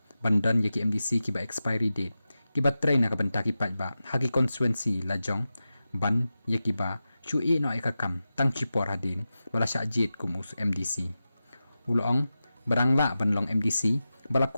ban don ki MDC ki ba expiry date ki batray na ka banta ki paidbah haki constituency la jong ban ki ba chu e no ka kam tang chi por hadin bala sha jit kum us MDC ulong barang la ban long MDC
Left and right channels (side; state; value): both; inverted; correlation -0.93